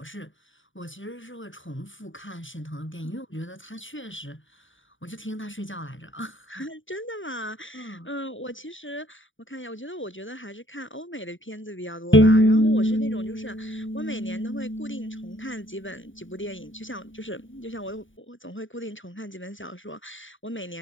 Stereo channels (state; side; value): late; right; 0.56 ms